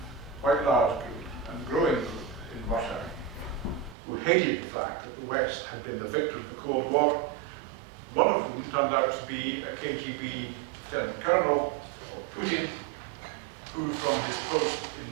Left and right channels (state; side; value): drops out; left; at 4.0 s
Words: quite large group and growing group in Russia, who hated the fact that the West had been the victor of the Cold War, one of whom turned out to be a KGB lieutenant colonel, Putin, who from his post